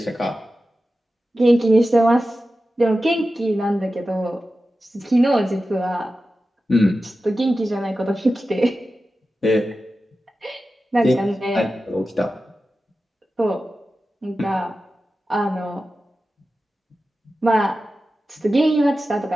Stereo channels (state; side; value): normal; both; correlation 0.93